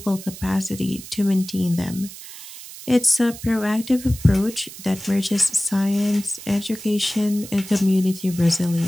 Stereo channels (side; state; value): right; noise; hiss, 14 dB below the sound